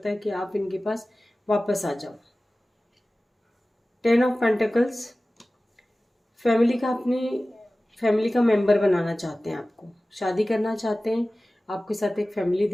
है कि आप इनके पास वापस आ जाओ। 10 ऑफ पेंटिकल्स, फैमिली का मेंबर बनाना चाहते हैं, आपको शादी करना चाहते हैं, आपके साथ एक फैमिली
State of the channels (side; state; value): both; normal; correlation 0.97